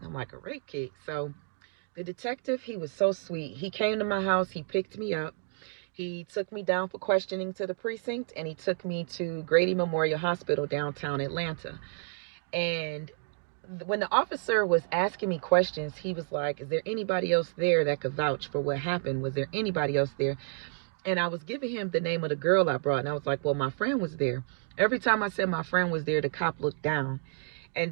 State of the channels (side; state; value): left; silent; 58 dB below the other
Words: I'm like, a rape kit? So the detective, he was so sweet. He came to my house, he picked me up. He took me down for questioning to the precinct, and he took me to Grady Memorial Hospital downtown Atlanta. And when the officer was asking me questions, he was like, is there anybody else there that could vouch for what happened? Was there anybody else there? And I was giving him the name of the girl I brought, and I was like, well, my friend was there. Every time I said my friend was there, the cop looked down. And